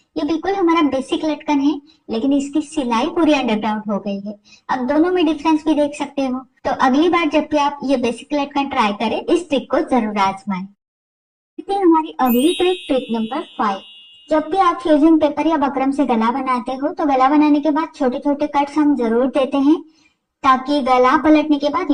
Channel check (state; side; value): identical; both; correlation 1.00